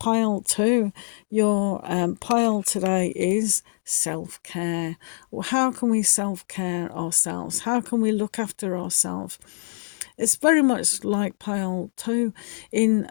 2, your pile today is self-care. Well, how can we self-care ourselves? How can we look after ourselves? It's very much like pile 2 in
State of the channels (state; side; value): silent; right; 62 dB below the other